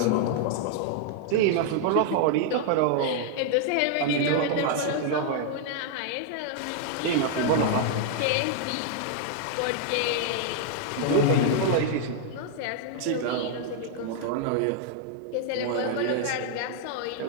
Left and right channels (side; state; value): both; different; correlation 0.00